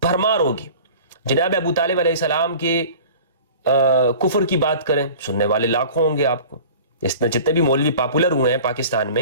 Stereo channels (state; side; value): inverted; both; correlation -0.42